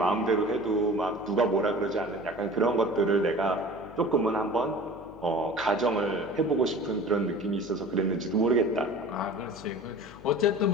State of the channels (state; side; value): noise; left; hum, 19 dB below the sound